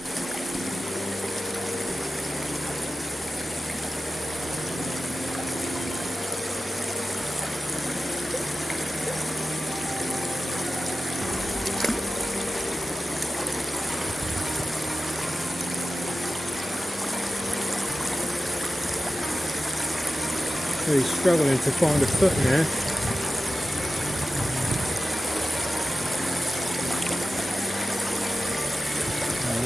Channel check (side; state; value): both; normal; correlation 0.95